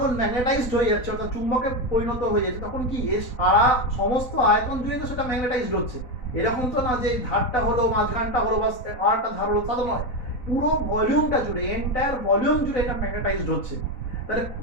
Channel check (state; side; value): late; right; 4.0 ms